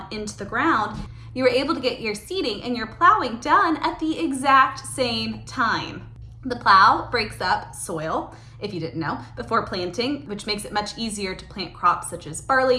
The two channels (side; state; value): both; identical; correlation 1.00